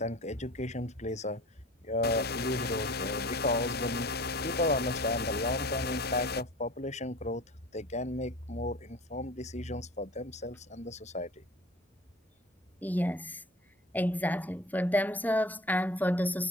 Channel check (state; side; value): normal; both; correlation 0.40